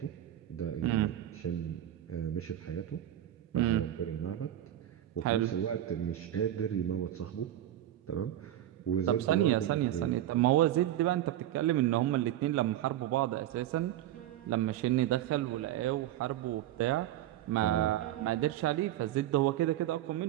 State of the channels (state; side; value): quieter; left; 12.7 dB